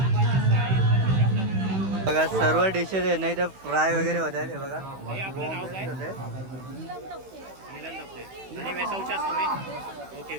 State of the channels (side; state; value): left; late; 16 ms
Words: सर्व डिशेस आहे नाही तर फ्राय वगैरे होत आहेत. हे बघा आपलं नाव काय? होते. नीलम दप्ते. आणि वेसावच्याच तुम्ही? ओके.